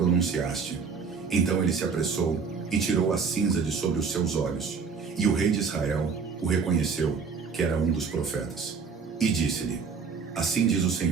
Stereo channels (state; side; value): quieter; left; 5.5 dB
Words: Então ele se apressou e tirou a cinza de sobre os seus olhos. E o rei de Israel o reconheceu, que era um dos profetas. E disse-lhe: Assim diz o